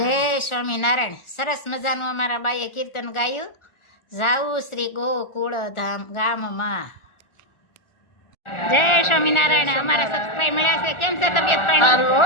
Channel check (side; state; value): right; late; 1.4 ms